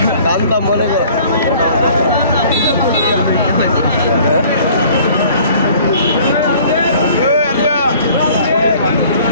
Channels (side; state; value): both; inverted; correlation -0.52